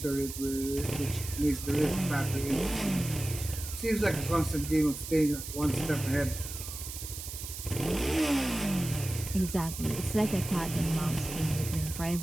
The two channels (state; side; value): noise; right; hiss, 9 dB below the sound